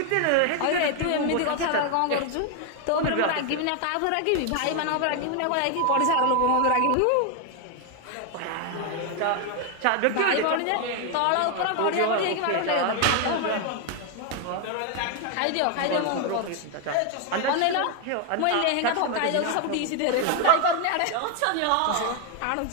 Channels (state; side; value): different; both; correlation 0.01